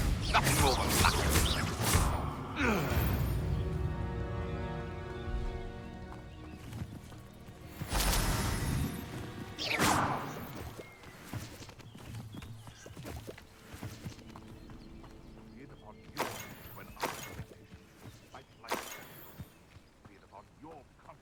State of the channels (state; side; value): identical; both; correlation 1.00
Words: Nothing more than luck. Be it upon your head when I fight like that. Be it upon your